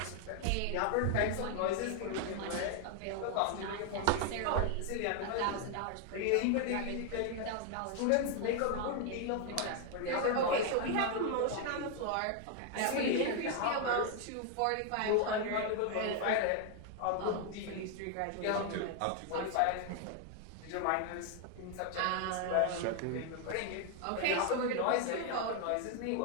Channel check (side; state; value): both; different; correlation 0.00